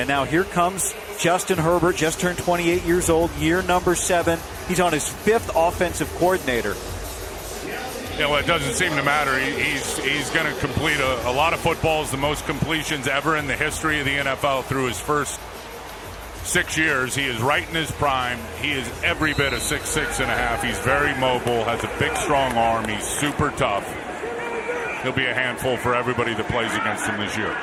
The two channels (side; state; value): both; identical; correlation 1.00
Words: now here comes Justin Herbert, just turned 28 years old, year number 7. He's on his 5th offensive coordinator. Yeah, well, it doesn't seem to matter. He's going to complete a lot of footballs, the most completions ever in the history of the NFL through his first 6 years. He is right in his prime. He is every bit of 6'6.5". He's very mobile, has a big, strong arm. He's super tough. He'll be a handful for everybody that plays against him this year.